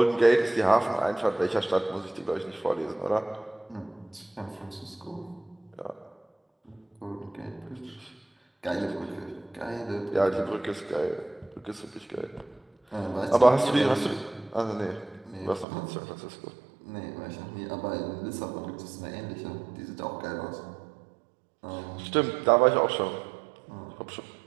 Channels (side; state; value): left; drops out; at 15.7 s